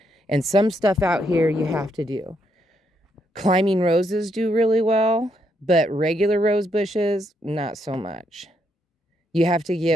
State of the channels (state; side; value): normal; both; correlation 0.76